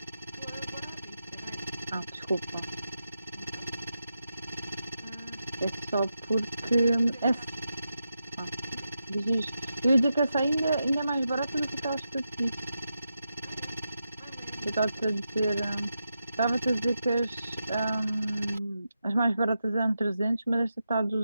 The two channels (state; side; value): inverted; both; correlation -0.88